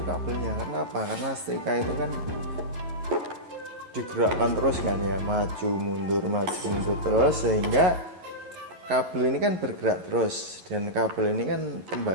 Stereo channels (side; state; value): left; late; 11 ms